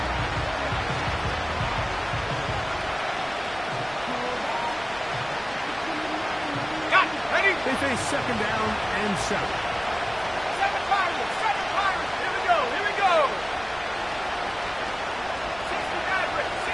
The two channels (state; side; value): noise; right; rumble, 20 dB below the sound